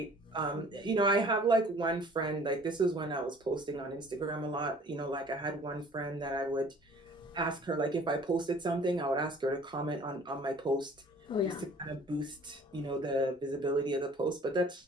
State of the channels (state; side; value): normal; both; correlation 0.51